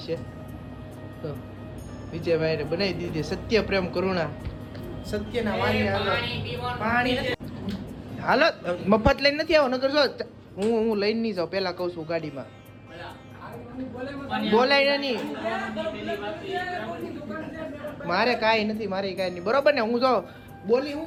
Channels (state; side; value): identical; both; correlation 1.00